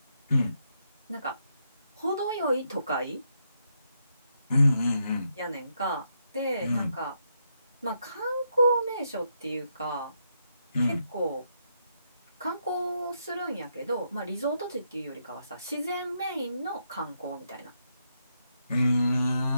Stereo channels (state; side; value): inverted; both; correlation -0.79